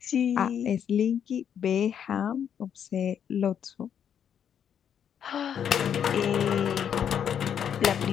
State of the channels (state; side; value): quieter; right; 8.6 dB